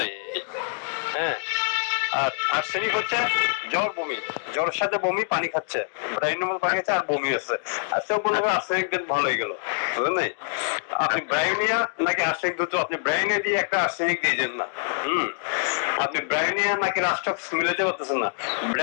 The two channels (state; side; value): silent; right; digital silence